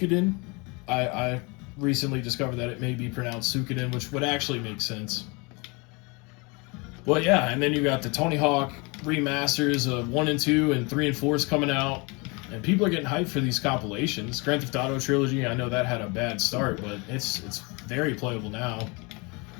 I recently discovered that it may be pronounced Suikoden, which would actually make sense. But yeah, and then you got the Tony Hawk remasters of 1 and 2, and 3 and 4 is coming out. And people are getting hyped for these compilations. Grand Theft Auto Trilogy, I know that had a bad start, but it's very playable now.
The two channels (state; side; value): quieter; right; 28.9 dB